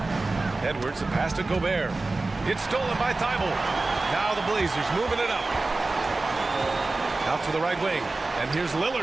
Edwards, the pass to Gobert. It's stolen by Thibault. Now the Blazers moving it up. Out to the right wing. And here's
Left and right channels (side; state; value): left; quieter; 3.3 dB